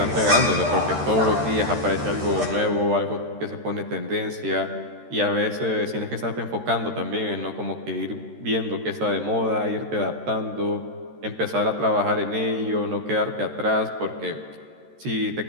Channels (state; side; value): late; left; 13 ms